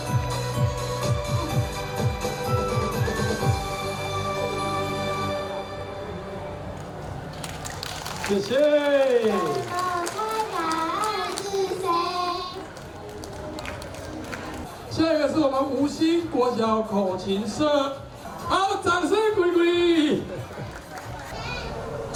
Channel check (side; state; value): both; identical; correlation 1.00